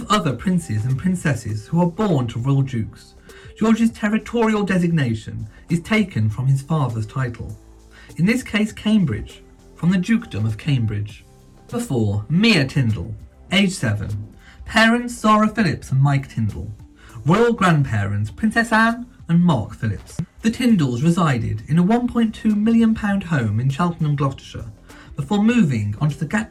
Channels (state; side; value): identical; both; correlation 1.00